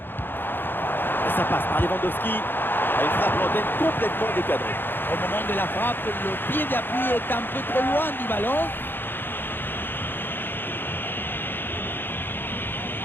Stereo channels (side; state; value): right; late; 0.099 ms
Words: Et ça passe par Lewandowski. Une frappe lointaine complètement décadrée. Au moment de la frappe, le pied d'appui est un peu trop loin du ballon.